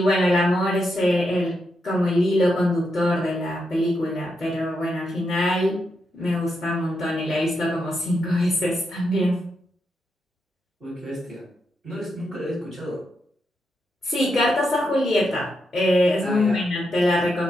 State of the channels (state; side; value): normal; both; correlation 0.83